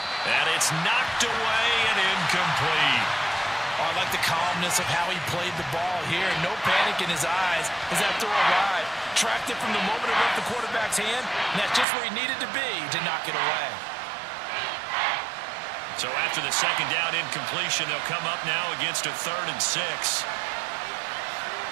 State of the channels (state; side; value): drops out; left; at 11.9 s